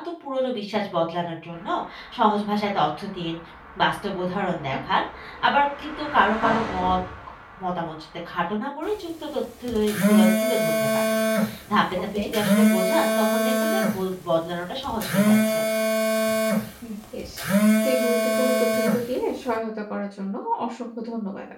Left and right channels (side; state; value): both; identical; correlation 1.00